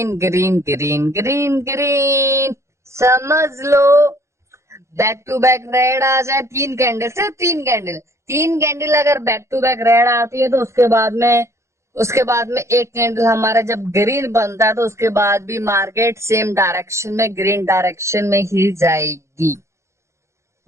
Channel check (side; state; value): left; late; 0.14 ms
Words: green green green green. समझ लो, बैक टू बैक रेड आ जाए 3 कैंडल, सिर्फ 3 कैंडल अगर बैक टू बैक रेड आती है तो उसके बाद में एक कैंडल हमारा जब ग्रीन बनता है तो उसके बाद भी मार्केट सेम डायरेक्शन में, ग्रीन डायरेक्शन में ही जाएगी।